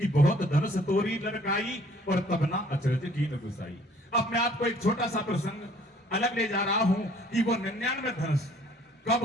बहुत धनुष तोरी लड़काई और तब ना अचरज की न गुसाई। अब मैं आपको एक छोटा सा प्रसंग अलग ले जा रहा हूं कि वो 99 धनुष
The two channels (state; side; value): normal; both; correlation 0.57